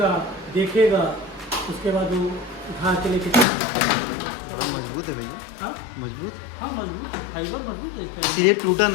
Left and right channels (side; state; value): right; drops out; at 3.5 s